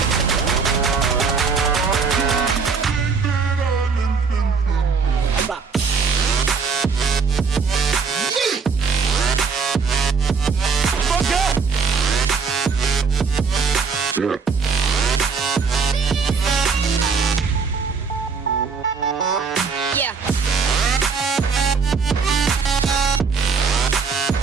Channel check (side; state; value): left; quieter; 5.3 dB